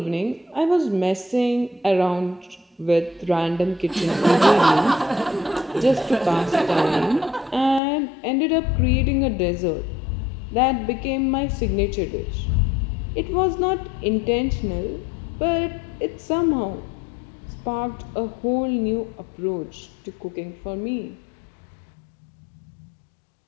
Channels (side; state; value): right; drops out; at 7.8 s